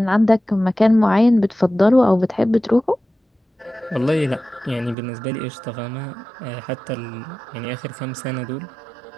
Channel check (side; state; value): left; drops out; at 5.0 s